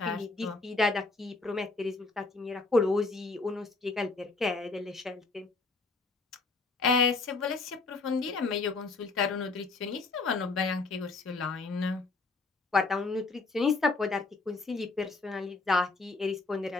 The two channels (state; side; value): quieter; right; 3.7 dB